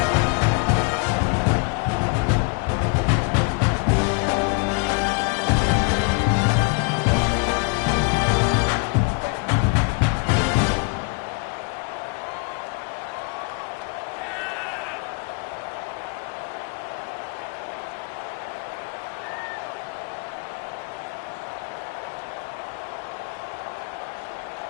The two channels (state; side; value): quieter; right; 32.6 dB